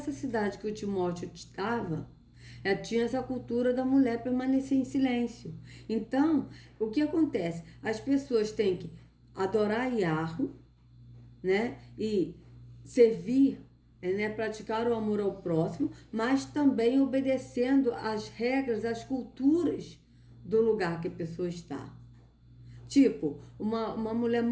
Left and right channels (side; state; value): both; identical; correlation 1.00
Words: cidade que o Timóteo estava, tinha essa cultura da mulher permanecer em silêncio. Então, o que acontece? As pessoas têm que adorar Yahweh, né? E servir, né? Praticar o amor ao próximo, mas também obedecendo às regras, às culturas do lugar que a pessoa está. Tipo, uma mulher